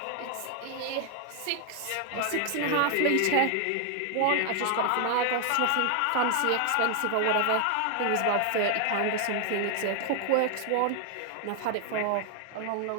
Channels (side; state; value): both; different; correlation 0.00